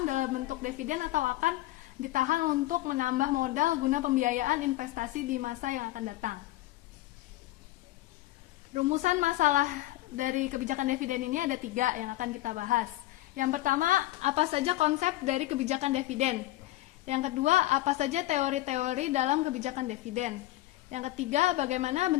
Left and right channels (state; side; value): quieter; right; 16.5 dB